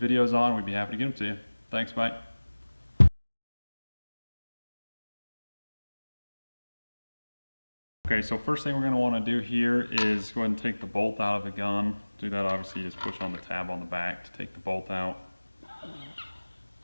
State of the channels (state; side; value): inverted; both; correlation -1.00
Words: videos on. We'd be happy to get them to you. Thanks, bye. Okay, so first thing we're going to want to do here is go ahead and take the bolt out of the gun. To do that, obviously, you just push on the tab on the back to take the bolt out.